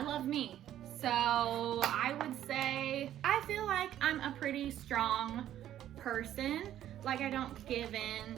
love me. So I would say I feel like I'm a pretty strong person. Like I don't give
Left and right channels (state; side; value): quieter; left; 11.8 dB